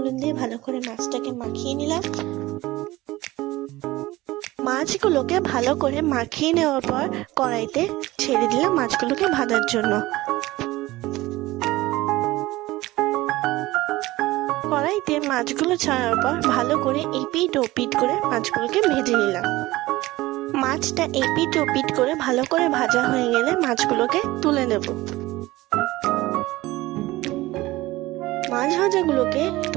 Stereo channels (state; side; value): quieter; left; 18.6 dB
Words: দিয়ে ভালো করে মাছটাকে মাখিয়ে নিলাম। মাছগুলোকে ভালো করে মাখিয়ে নেওয়ার পর কড়াইতে ছেড়ে দিলাম মাছগুলোকে ভাজার জন্য। কড়াইতে মাছগুলো ছাড়ার পর ভালো করে এপিট ওপিট করে মাছগুলোকে ভেজে নিলাম। মাছটা এপিট ওপিট করে ভালো করে ভাজা হয়ে গেলে মাছগুলোকে তুলে নেব। মাছ ভাজাগুলোকে